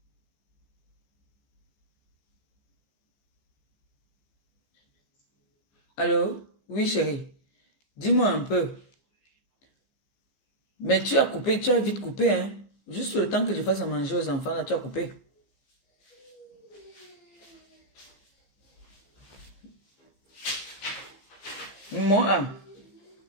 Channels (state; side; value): late; right; 15 ms